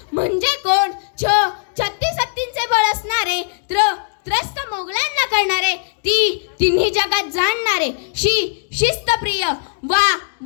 म्हणजे कोण? छत्तीस हत्तींचे बळ असणारे, त्रस्त मोगलांना करणारे, तिन्ही जगात जाणणारे, शिस्तप्रिय,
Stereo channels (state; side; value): silent; right; 67 dB below the other